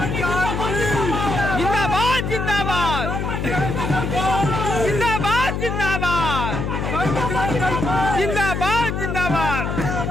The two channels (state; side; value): noise; left; hum, 2 dB below the sound